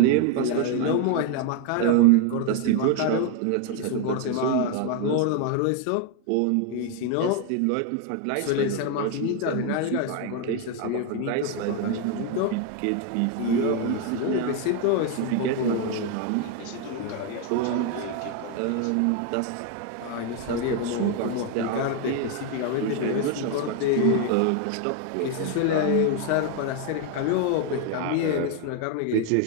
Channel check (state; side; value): different; both; correlation 0.01